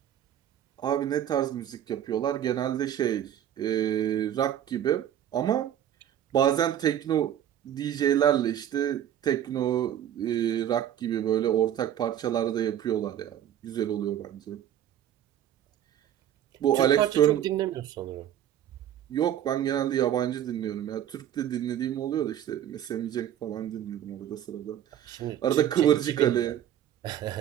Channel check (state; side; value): quieter; left; 10.7 dB